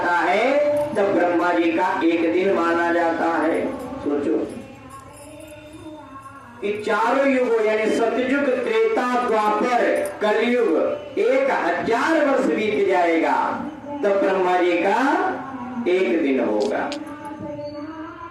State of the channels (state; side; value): identical; both; correlation 1.00